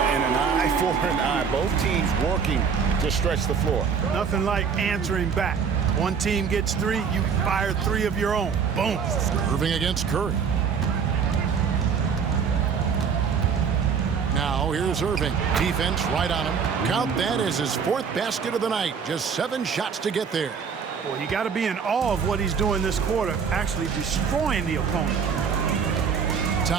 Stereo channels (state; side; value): quieter; left; 6.4 dB